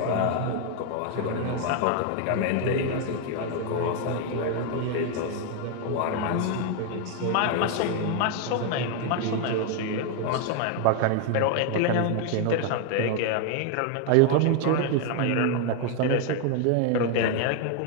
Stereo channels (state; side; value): different; both; correlation 0.00